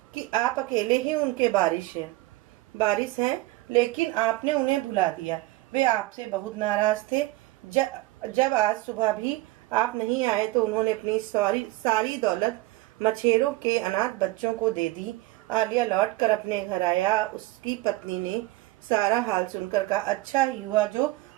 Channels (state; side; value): quieter; left; 19.4 dB